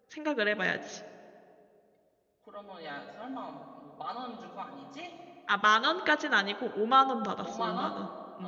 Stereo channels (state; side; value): identical; both; correlation 1.00